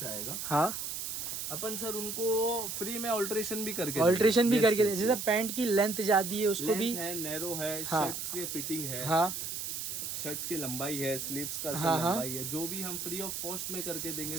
आएगा, हाँ, अपन सर उनको फ्री में ऑल्ट्रेशन भी करके ऑल्ट्रेशन भी Yes, करके yes, जैसे yes. पैंट की लेंथ ज्यादा है उसको भी। Length है, नैरो है, हाँ। शर्ट्स की फिटिंग है। हाँ, शर्ट्स की लंबाई है, स्लीव्स का हाँ, हाँ। लंबाई है, जो भी हम फ्री ऑफ कॉस्ट में करके देंगे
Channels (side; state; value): right; noise; hiss, 4 dB below the sound